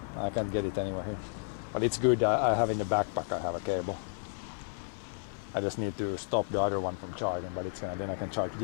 I can't get it anywhere here. But it's good. I have in the backpack. I have a cable. I just need to stop the other one from charging, but it's gonna. Then I can charge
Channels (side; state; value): right; silent; 56 dB below the other